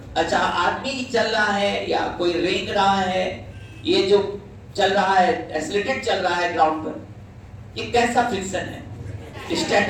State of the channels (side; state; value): both; identical; correlation 1.00